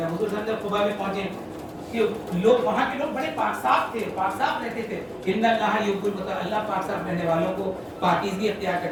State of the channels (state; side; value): identical; both; correlation 1.00